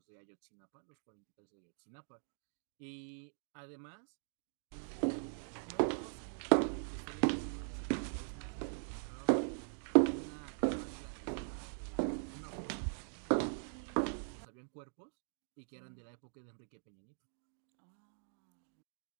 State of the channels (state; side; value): silent; left; digital silence